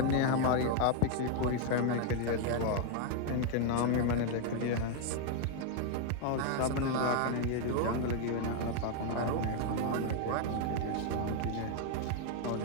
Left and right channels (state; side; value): different; both; correlation 0.00